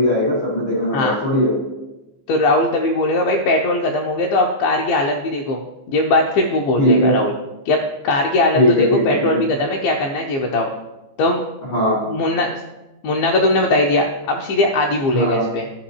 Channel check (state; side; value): late; right; 15 ms